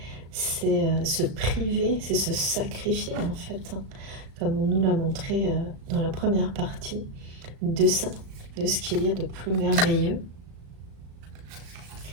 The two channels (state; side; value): late; left; 36 ms